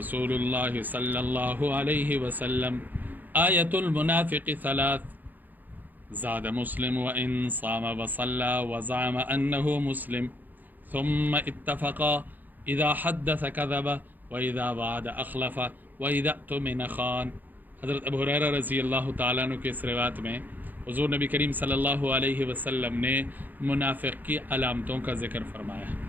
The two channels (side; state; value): left; late; 0.085 ms